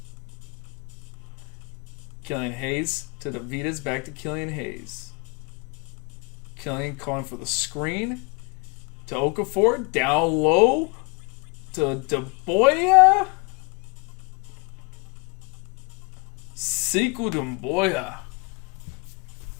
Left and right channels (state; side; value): quieter; right; 30.0 dB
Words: Killian Hayes to DeVitas, back to Killian Hayes. Killian calling for the screen to Okafor, down low to DeBoya. Sekou Doumbouya